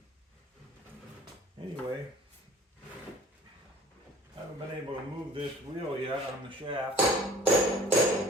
anyway, I haven't been able to move this wheel yet on the shaft.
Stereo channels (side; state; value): both; normal; correlation 0.50